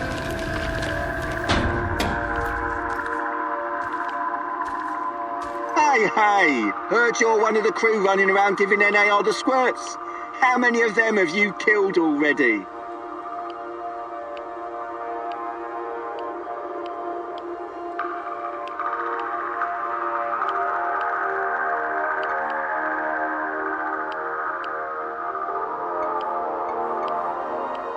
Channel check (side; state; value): both; identical; correlation 1.00